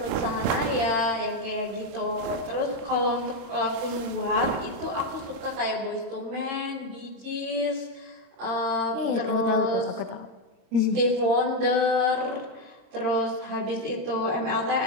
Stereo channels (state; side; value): late; left; 26 ms